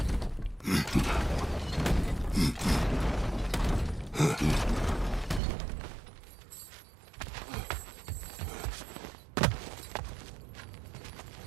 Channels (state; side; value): drops out; left; at 5.4 s